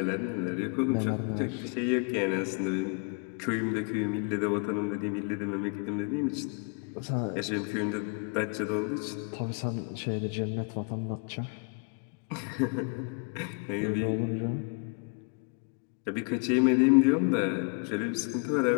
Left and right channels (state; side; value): quieter; right; 35.2 dB